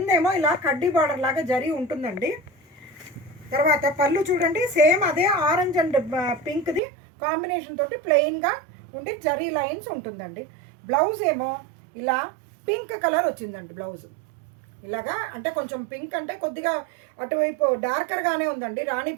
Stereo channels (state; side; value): drops out; left; at 6.8 s